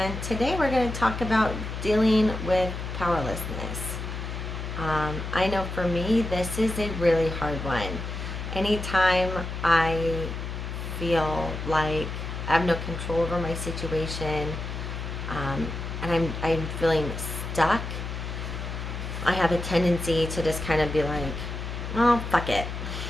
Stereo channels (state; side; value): noise; left; hum, 6 dB below the sound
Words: today we're going to talk about dealing with powerlessness. I know for me, this is a really hard one. Anytime I feel like I have no control over my situation, and I'm feeling stuck, I have a tendency to just kind of be like, oh, fuck it.